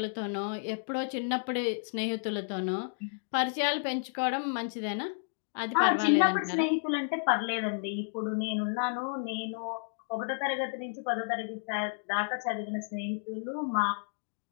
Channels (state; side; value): silent; right; digital silence